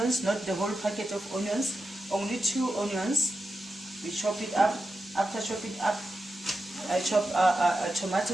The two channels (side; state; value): both; normal; correlation 0.90